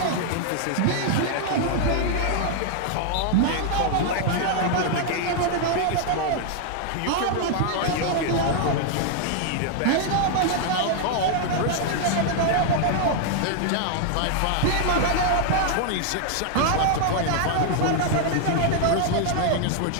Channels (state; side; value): different; both; correlation 0.00